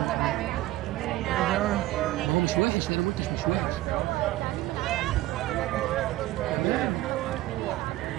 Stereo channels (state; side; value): quieter; left; 16.6 dB